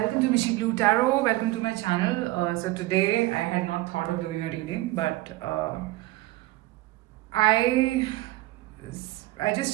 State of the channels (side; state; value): left; quieter; 18.1 dB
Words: to Mishi Blue Tarot. Welcome to my channel. So today I had not thought of doing a reading, but I I